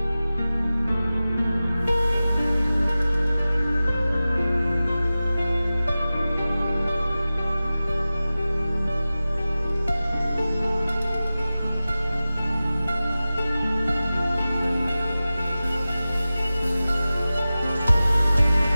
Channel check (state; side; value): inverted; both; correlation -0.96